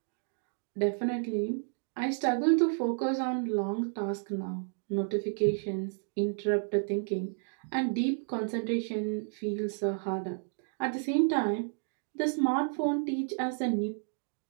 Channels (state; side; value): silent; left; digital silence